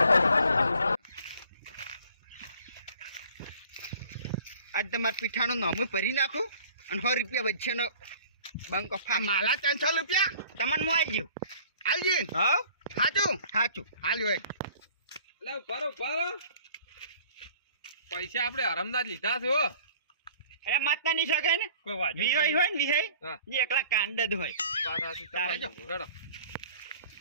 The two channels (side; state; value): both; inverted; correlation -0.50